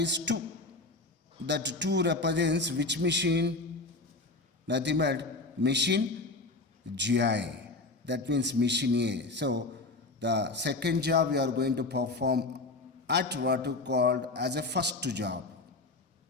is 2. That 2 represents which machine? Nothing but machine GI. That means machine A. So, the second job we are going to perform at what you called as a first job.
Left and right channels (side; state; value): right; quieter; 3.3 dB